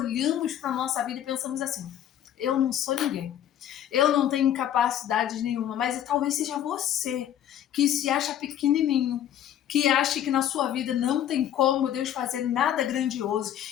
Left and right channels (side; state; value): right; quieter; 10.8 dB